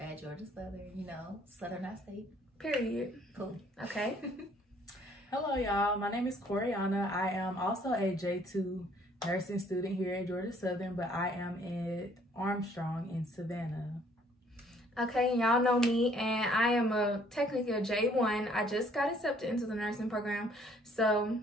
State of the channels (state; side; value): normal; both; correlation 0.61